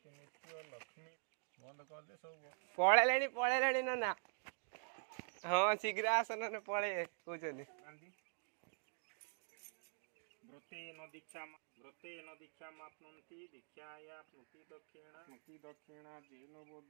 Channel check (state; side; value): silent; left; digital silence